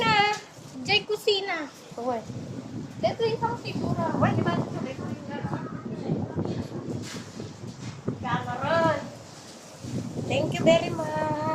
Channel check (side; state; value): both; identical; correlation 1.00